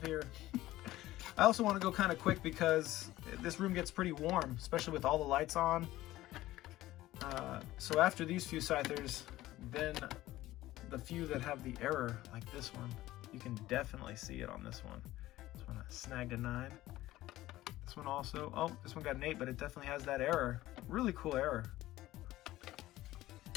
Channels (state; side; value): quieter; right; 16.1 dB